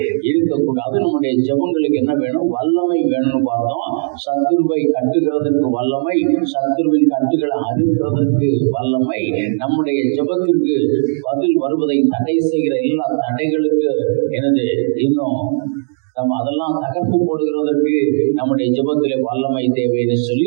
இருக்கக்கூடாது. நம்முடைய ஜெபங்களுக்கு என்ன வேணும்? வல்லமை வேணும்னு பார்த்தோம். சத்துருவை கட்டுகிறதற்கு வல்லமை, சத்துருவின் கட்டுகளை அறுக்கிறதற்கு வல்லமை, நம்முடைய ஜெபத்திற்கு பதில் வருவதை தடை செய்கிற எல்லா தடைகளுக்கு எனது இன்னும் நம்ம அதெல்லாம் தகர்த்து போடுகிறதற்கு நம்முடைய ஜெபத்திலே வல்லமை தேவைன்னு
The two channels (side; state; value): left; silent; digital silence